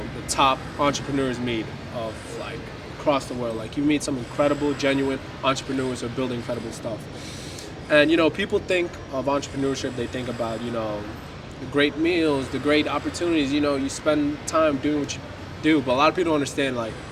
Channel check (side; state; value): both; identical; correlation 1.00